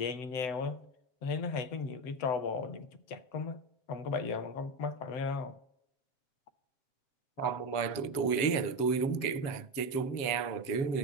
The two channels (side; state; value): right; late; 7.6 ms